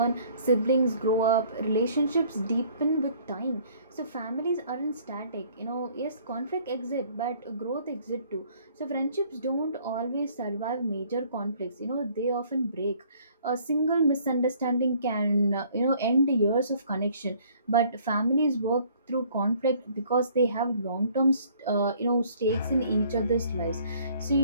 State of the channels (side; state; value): both; inverted; correlation -0.58